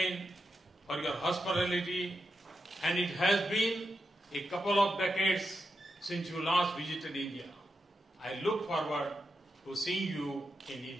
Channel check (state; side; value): normal; both; correlation 0.86